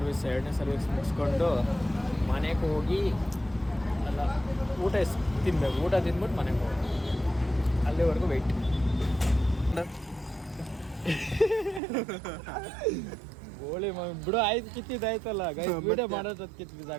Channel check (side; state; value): left; drops out; at 11.8 s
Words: ಮುಗಿಸ್ಕೊಂಡು ಮನೆಗೆ ಹೋಗಿ ಅಲ್ಲ ಊಟ ತಿನ್ಬೇಕು. ಊಟ ತಿಂದ್ಬಿಟ್ಟು ಮನೆಗೆ ಹೋಗಿ ಅಲ್ಲಿವರೆಗೂ ವೆಯ್ಟ್. ಗೋಳಿ ಬಿಡು, ಆಯ್ತು ಕಿತ್ತಿದ್ದಾಯ್ತಲ್ಲ ಗೈಸ್. ವಿಡಿಯೋ ಮಾಡೋದು ಕಿತ್ತು